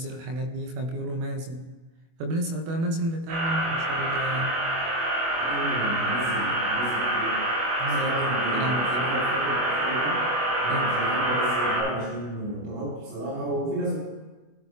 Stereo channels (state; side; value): late; left; 24 ms